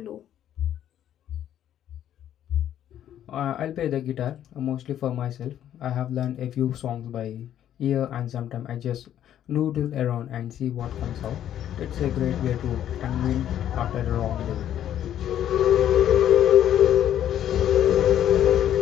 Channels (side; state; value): right; quieter; 10.9 dB